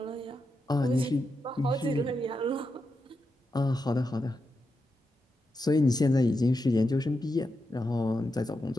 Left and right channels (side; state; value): both; normal; correlation 0.86